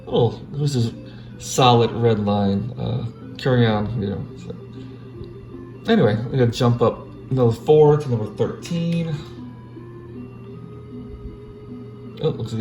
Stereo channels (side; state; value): both; identical; correlation 1.00